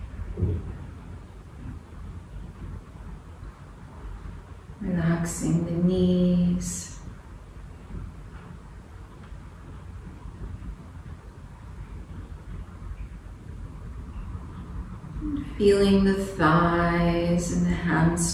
Relaxing the knees. Feeling the thighs and the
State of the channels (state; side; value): identical; both; correlation 1.00